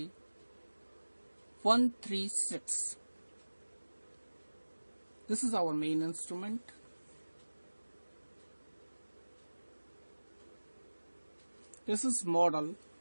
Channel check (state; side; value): inverted; both; correlation -1.00